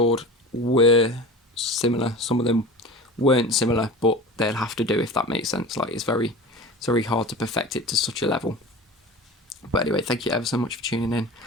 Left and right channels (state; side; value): normal; both; correlation 0.33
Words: were similar. Some of them weren't similar, but they'll have to do if that makes sense. Like it's very hard to perfect it to such a level. But anyway, thank you ever so much for tuning in.